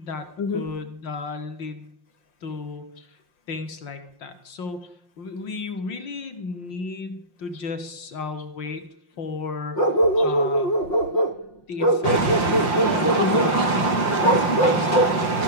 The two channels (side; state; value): right; late; 5.7 ms